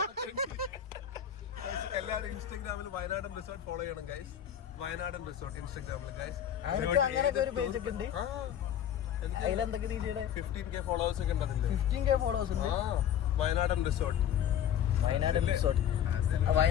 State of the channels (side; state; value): right; quieter; 9.6 dB